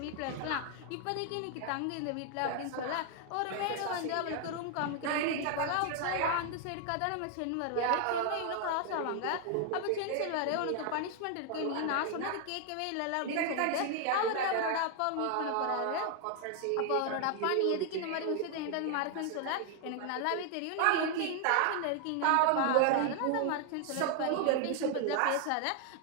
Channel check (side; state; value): both; different; correlation 0.00